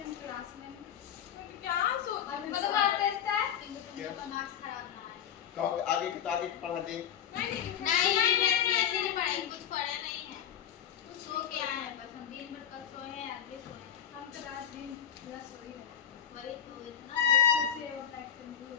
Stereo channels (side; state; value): right; quieter; 9.3 dB